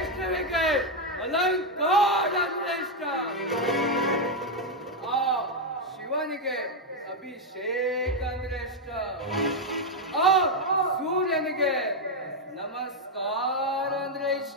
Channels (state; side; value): normal; both; correlation 0.03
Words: ಅಲಂಕಾರ ಶ್ರೇಷ್ಠ ಆ ಶಿವನಿಗೆ ಅಭಿಷೇಕ ಅಂದ್ರೆ ಇಷ್ಟ ಆ ಸೂರ್ಯನಿಗೆ ನಮಸ್ಕಾರ ಅಂದ್ರೆ